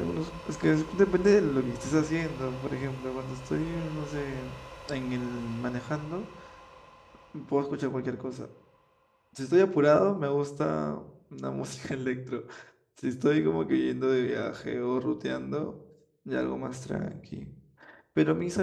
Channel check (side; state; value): both; identical; correlation 1.00